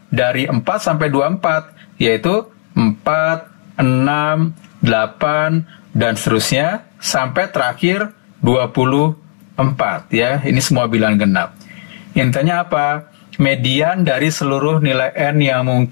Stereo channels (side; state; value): right; silent; digital silence